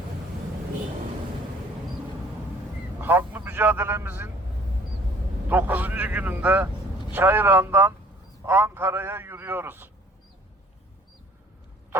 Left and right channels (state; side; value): normal; both; correlation 0.55